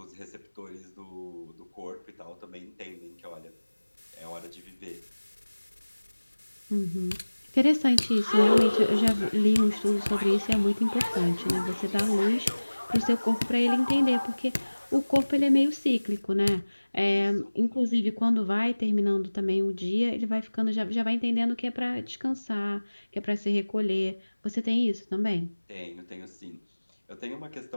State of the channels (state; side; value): inverted; both; correlation -1.00